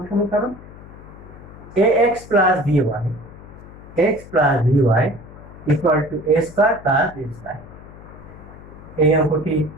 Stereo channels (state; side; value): noise; left; hum, 18 dB below the sound